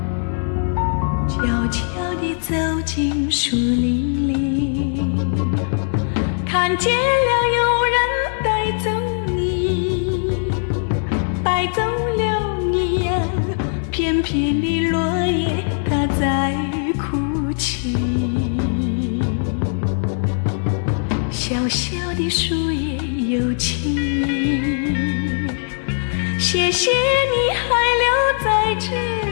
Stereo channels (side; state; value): right; silent; 66 dB below the other